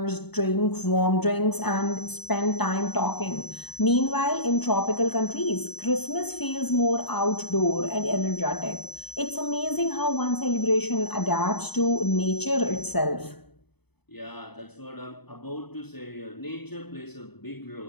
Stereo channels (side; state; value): right; late; 0.98 ms